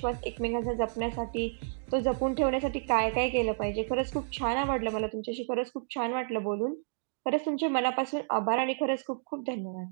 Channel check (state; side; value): silent; left; digital silence